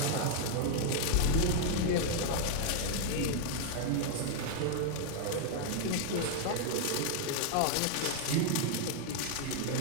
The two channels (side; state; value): both; different; correlation 0.00